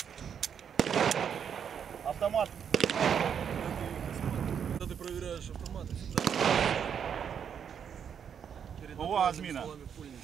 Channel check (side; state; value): left; quieter; 7.8 dB